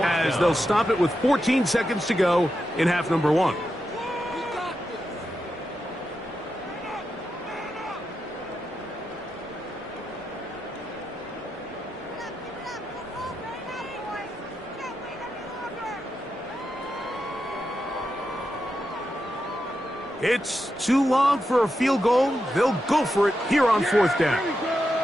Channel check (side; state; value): both; normal; correlation 0.87